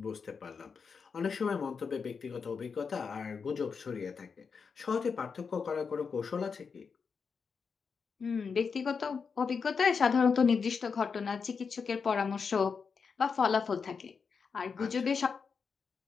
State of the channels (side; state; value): right; quieter; 5.6 dB